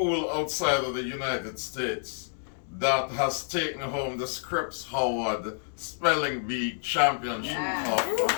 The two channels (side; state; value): right; silent; digital silence